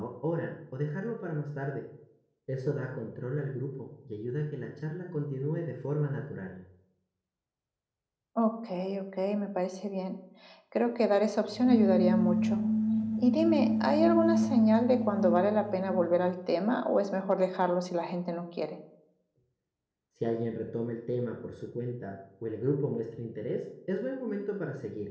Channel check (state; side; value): identical; both; correlation 1.00